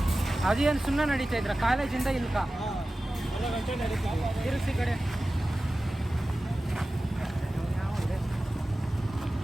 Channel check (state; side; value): normal; both; correlation 0.95